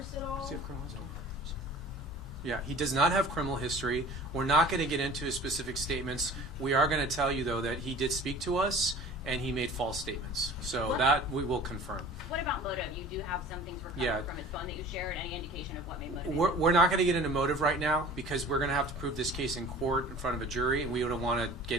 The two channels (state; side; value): normal; both; correlation 0.43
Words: at all? Does he have criminal history? Yeah, he does not have criminal history. We're not going to get into his specific statements. We are going to tell you, though, that he did speak to us and he made false statements. So What? that we will confirm. What about motive? You do have some things recovered Yeah. from his phone that you shared. Any indication of what may motivate? We're not going to get into motive right now because we're going to have to prove this case in court in front of a jury, and we don't want to